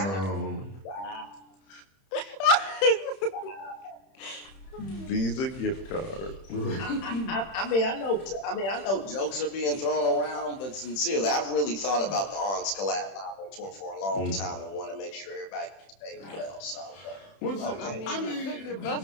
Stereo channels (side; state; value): right; late; 31 ms